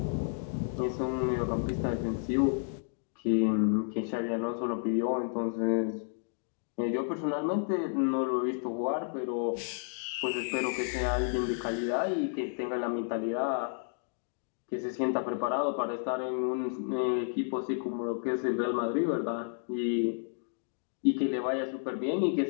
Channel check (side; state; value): right; silent; digital silence